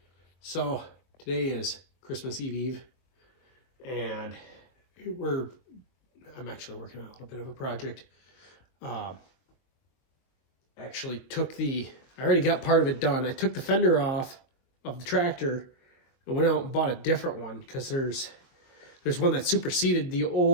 So today is Christmas Eve, and I'm actually working on a little bit of a project. I already got part of it done. I took the fender off of the tractor and went out and bought a different one because there's one that superseded the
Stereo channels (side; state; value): right; late; 23 ms